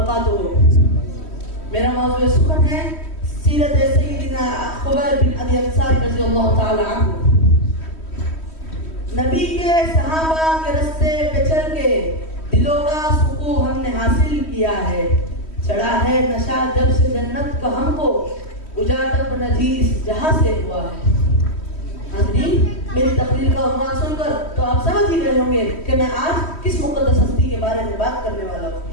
میرا موضوع سخن ہے سیرت سیدنا خبیب بن عدی انصاری رضی اللہ تعالی عنہ۔ نبی کے صحابہ کے رستے پہ چل کے دلوں کا سکون ہم نے حاصل کیا ہے، چڑھا ہے نشہ جب سے جنت کا ہم کو، اجاٹب نجی اس جہاں سے ہوا ہے۔ حاضرین، میری تقریر کا عنوان سن کر تو آپ سمجھ ہی گئے ہوں گے کہ میں آج کس مقدس ہستی کے بارے میں بات کرنے والا ہوں۔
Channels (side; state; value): right; late; 3.1 ms